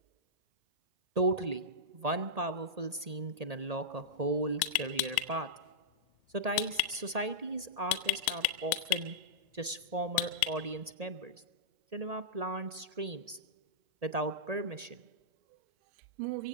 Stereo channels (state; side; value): late; left; 1.8 ms